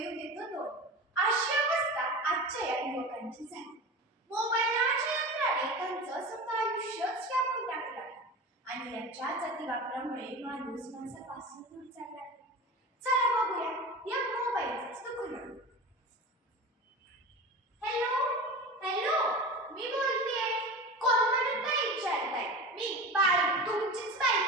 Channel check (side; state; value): both; normal; correlation 0.30